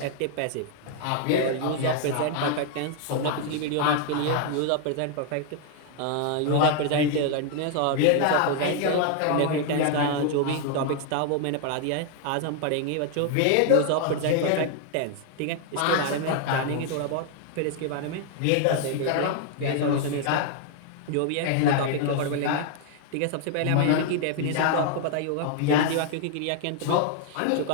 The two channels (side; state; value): both; different; correlation 0.00